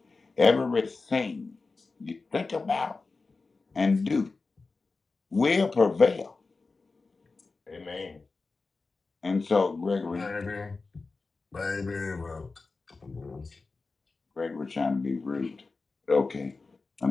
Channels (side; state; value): right; quieter; 3.9 dB